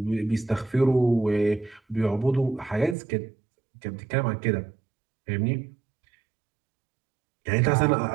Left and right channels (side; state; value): left; drops out; at 3.0 s